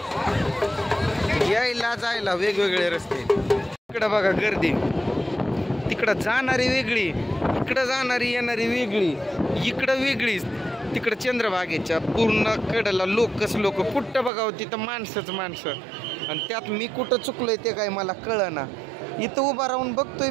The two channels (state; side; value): drops out; left; at 14.3 s